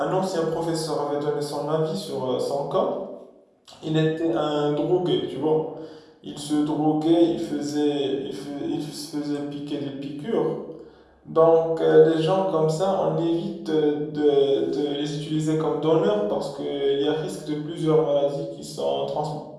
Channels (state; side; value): identical; both; correlation 1.00